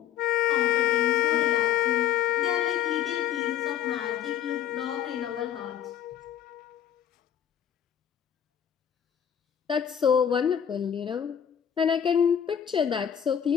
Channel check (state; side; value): quieter; right; 9.4 dB